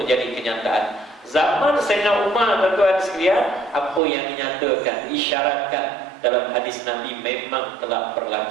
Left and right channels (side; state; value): left; drops out; at 4.0 s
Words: menjadi kenyataan. Zaman Sayyidina Umar tuan-tuan sekalian, apa yang dinyatakan, diisyaratkan dalam hadis Nabi memang telah